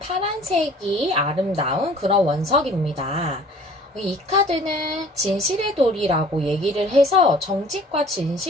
아름다운 그런 원석입니다. 이 카드는 진실의 돌이라고 얘기를 해서 정직과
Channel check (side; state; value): both; normal; correlation 0.51